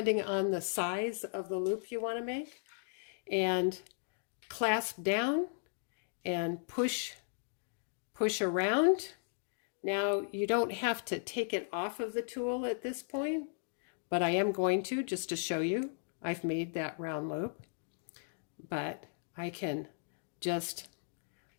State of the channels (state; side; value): silent; right; digital silence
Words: on the size of the loop you want to make, and clasp down and push around. Now you don't have to take it off of the tool at this point, but I am going to, just to show you. I've made that round loop, but I can just